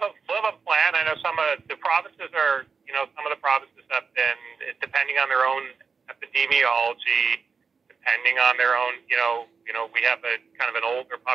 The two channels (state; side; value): quieter; left; 5.4 dB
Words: a plan. I know some of the provinces have been, depending on their own epidemiology, depending on their own, we have a kind of an older